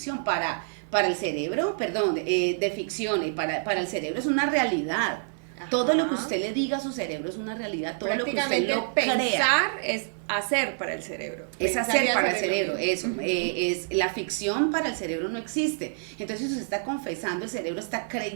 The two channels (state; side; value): silent; left; digital silence